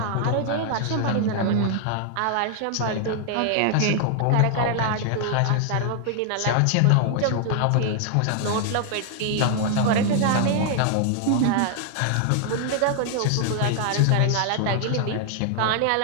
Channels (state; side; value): different; both; correlation 0.00